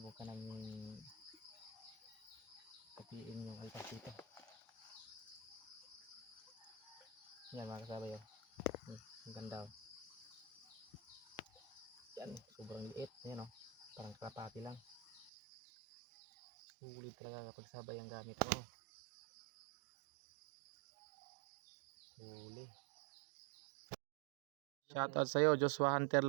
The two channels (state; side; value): drops out; left; at 15.3 s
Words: namin katiin yung alpas dito. Yan mga kasabay yun. Ang ganda. Yan, sobrang liit. Yan o. Parang kalapati lang. Sulit talaga kapag sabay ang gamit mo. Huli. Shoutout sa'yo, Joshua Hunter